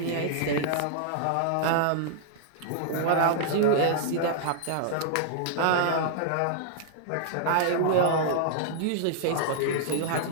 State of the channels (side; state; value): both; different; correlation -0.01